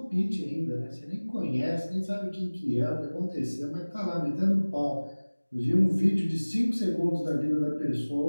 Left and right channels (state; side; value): inverted; both; correlation -1.00